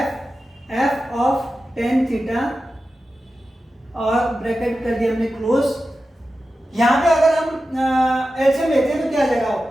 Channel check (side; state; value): both; normal; correlation 0.92